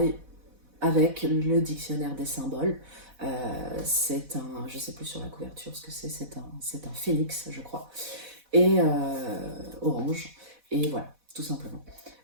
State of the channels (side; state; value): left; late; 4.1 ms